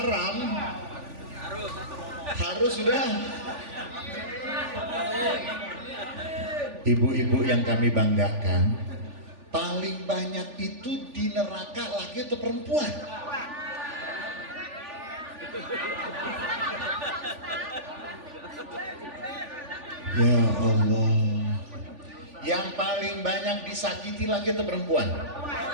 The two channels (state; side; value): late; left; 3.4 ms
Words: harus sudah. Ibu-ibu yang kami banggakan, paling banyak itu di neraka laki atau perempuan? Ya Allah. Yang paling banyak disakiti laki atau perempuan?